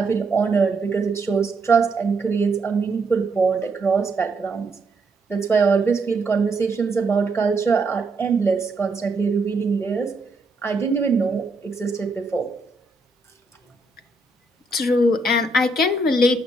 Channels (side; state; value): left; quieter; 3.1 dB